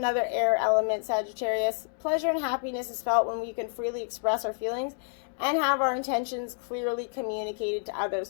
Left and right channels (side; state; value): right; silent; digital silence